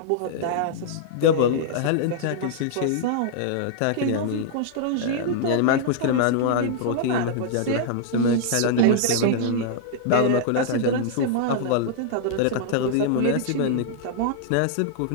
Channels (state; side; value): different; both; correlation -0.01